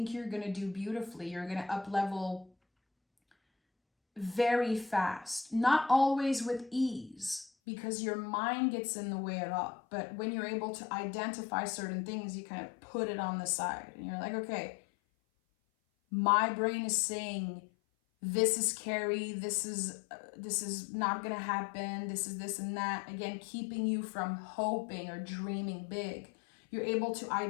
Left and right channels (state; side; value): drops out; right; at 7.5 s